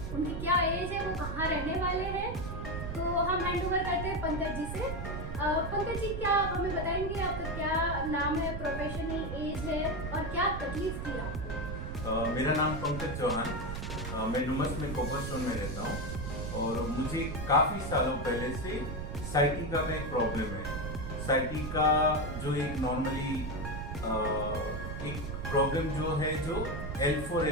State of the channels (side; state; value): right; noise; rumble, 5 dB below the sound